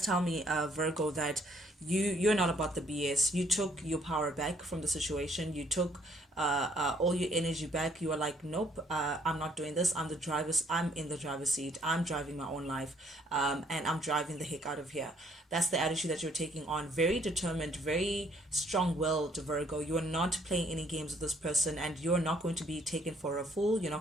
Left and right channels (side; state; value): both; normal; correlation 0.65